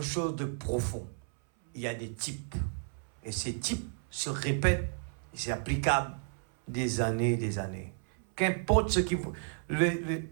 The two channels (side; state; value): left; silent; 56 dB below the other